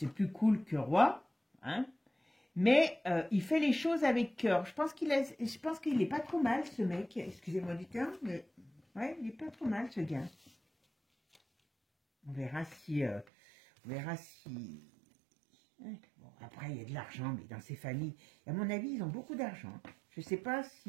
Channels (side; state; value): left; drops out; at 13.2 s